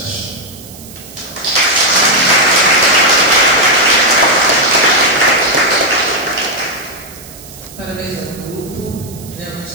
Parabéns ao grupo, realmente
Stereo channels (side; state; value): right; noise; hiss, 18 dB below the sound